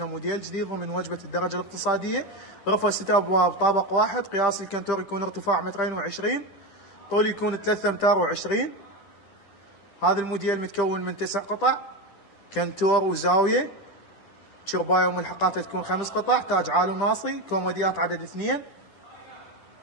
موديل جديد ضمن وجبه الدرجه الاقتصاديه. غرفه 6 ابواب، طابق واحد، قياس الكنتور يكون ارتفاع 2.20 متر، طول يكون 3 امتار و20. هذا الموديل متكون من 9 قطع، كنتور وزاويه، شربايه وملحقاتها تكون 5 قطع، تاج عالي وناصي، كوموديات عدد 2.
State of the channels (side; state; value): right; late; 10 ms